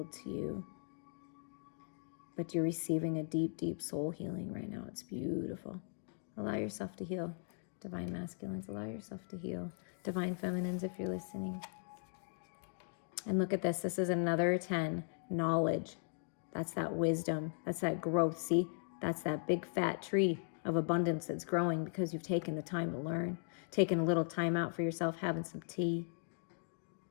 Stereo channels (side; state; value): right; silent; digital silence